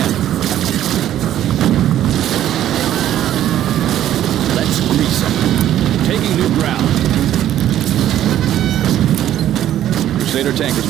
Let's grease them. Taking new ground. Crusader tank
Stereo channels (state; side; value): quieter; left; 11.9 dB